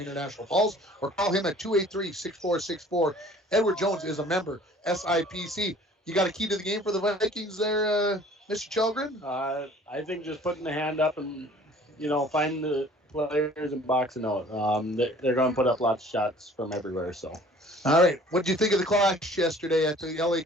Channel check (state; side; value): normal; both; correlation 0.52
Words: Falls, or call him at 283-6464. Edward Jones is a member, SIPC. You got a key to the game for the Vikings there, Mr. Chelgren? I think just putting the hand up and, find the players and boxing out. They're going to put up lots of shots from everywhere. So, all right. What did you think of the clash yesterday at the LA